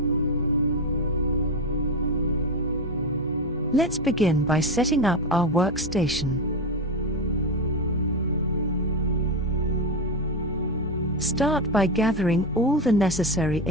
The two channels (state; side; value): normal; both; correlation 0.14